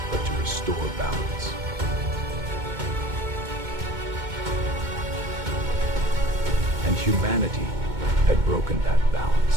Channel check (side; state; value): left; late; 2.2 ms